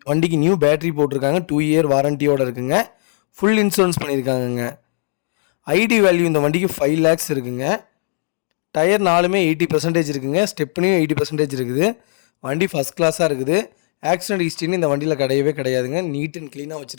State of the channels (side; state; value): right; silent; digital silence